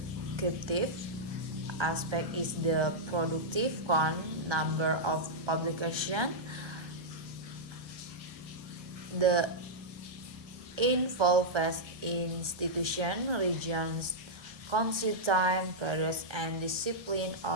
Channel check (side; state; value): left; late; 1.2 ms